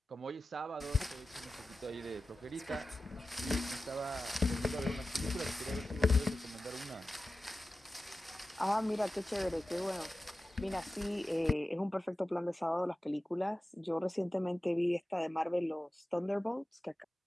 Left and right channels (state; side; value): normal; both; correlation 0.95